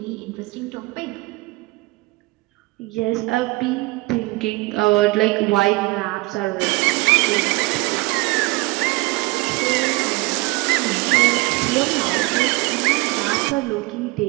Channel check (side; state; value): left; quieter; 23.4 dB